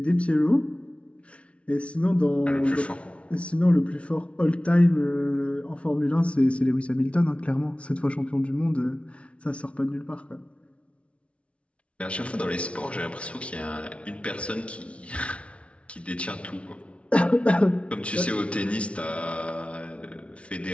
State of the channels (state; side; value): late; right; 0.061 ms